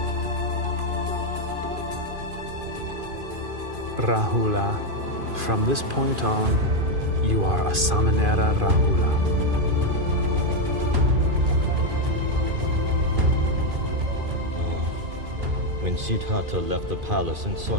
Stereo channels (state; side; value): late; left; 2.5 ms